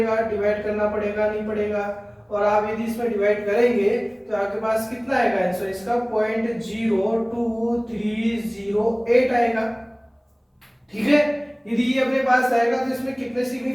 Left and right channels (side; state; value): both; identical; correlation 1.00